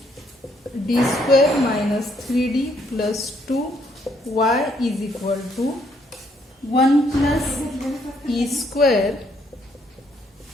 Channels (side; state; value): both; normal; correlation 0.70